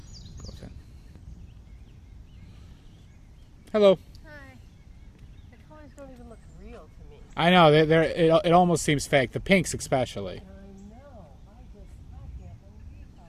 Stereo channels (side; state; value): both; identical; correlation 1.00